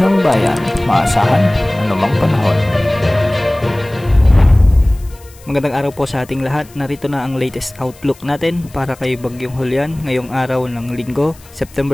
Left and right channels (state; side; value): noise; left; hiss, 25 dB below the sound